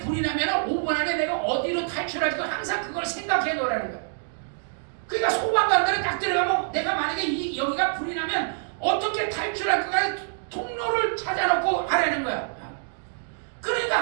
불이 나면 5분 안에 내가 어디로 탈출할지 항상 그걸 생각해 놓으라는 거예요. 그러니까 소방관들은 딱 들어가면 내가 만약에 여기가 불이 나면 어떻게 탈출할까 통로를 찾아놓고 하라는 거야.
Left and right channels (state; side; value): silent; left; digital silence